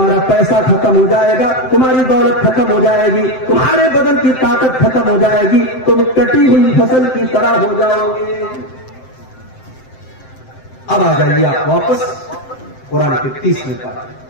پیسہ ختم ہو جائے گا، تمہاری دولت ختم ہو جائے گی، تمہارے بدن کی طاقت ختم ہو جائے گی، تم کٹی ہوئی فصل کی طرح ہو جاؤ گے. اب آ جائیے آپ واپس قرآن کے 30ویں پارے.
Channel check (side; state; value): right; late; 7.7 ms